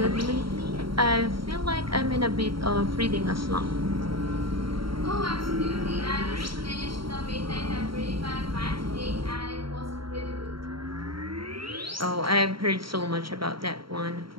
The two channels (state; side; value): late; left; 0.74 ms